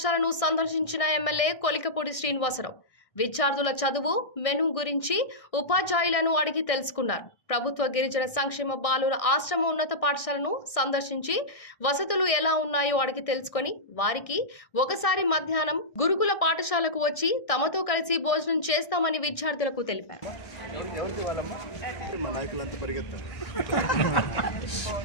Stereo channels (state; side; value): late; right; 1.6 ms